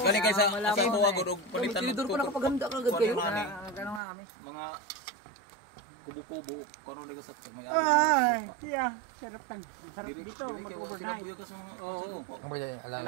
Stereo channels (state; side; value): drops out; left; at 4.0 s